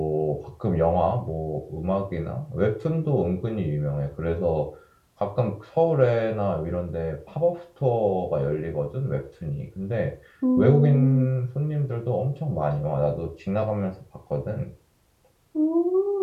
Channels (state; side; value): identical; both; correlation 1.00